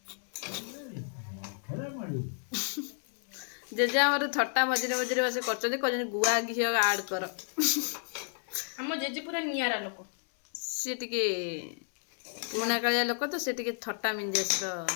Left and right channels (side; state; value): right; silent; 57 dB below the other